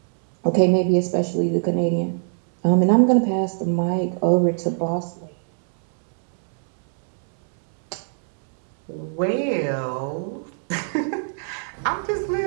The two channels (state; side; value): silent; left; digital silence